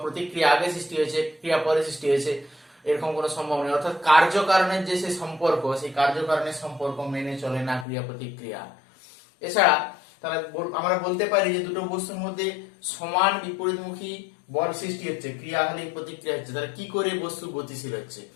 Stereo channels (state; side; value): drops out; right; at 7.9 s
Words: প্রতিক্রিয়া আগে সৃষ্টি হয়েছে ক্রিয়া পরে সৃষ্টি হয়েছে, এরকম কোনো সম্ভব নেই। অর্থাৎ কার্যকারণের যে সেই সম্পর্ক, সেই কার্যকারণের সম্পর্ক মেনে চলে না ক্রিয়া প্রতিক্রিয়া। এছাড়া তাহলে আমরা বলতে পারি যে দুটো বস্তুর মধ্যে সমান বিপরীতমুখী বল সৃষ্টি হচ্ছে, ক্রিয়া হলে প্রতিক্রিয়া হচ্ছে, তাহলে কি করে বস্তু গতিশীল হচ্ছে